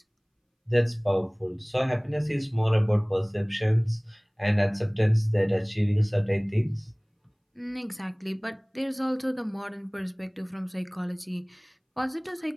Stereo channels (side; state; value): both; identical; correlation 1.00